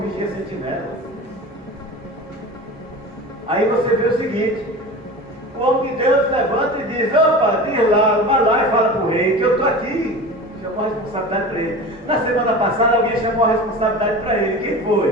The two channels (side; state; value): both; normal; correlation 0.33